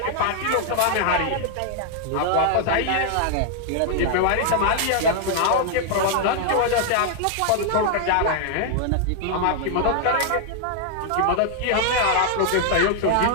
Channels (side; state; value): both; different; correlation -0.01